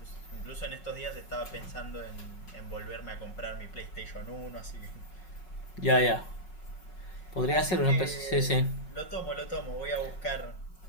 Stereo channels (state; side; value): late; right; 5.4 ms